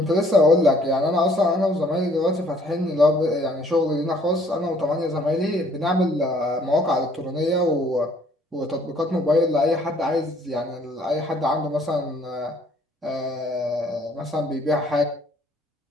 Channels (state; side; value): normal; both; correlation 0.61